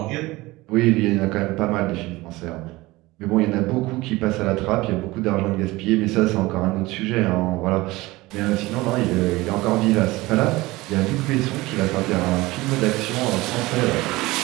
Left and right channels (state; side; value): quieter; left; 20.2 dB